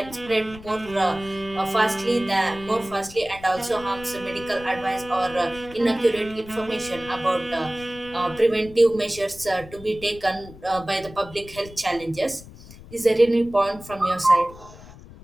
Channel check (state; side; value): noise; left; rumble, 18 dB below the sound